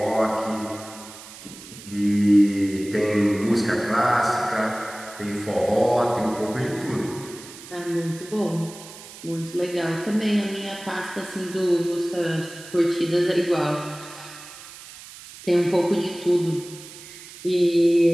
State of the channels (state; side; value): noise; right; hiss, 16 dB below the sound